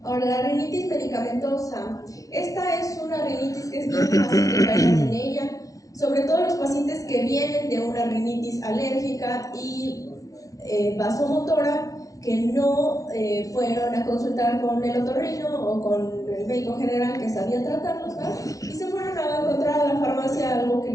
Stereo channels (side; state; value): right; late; 0.17 ms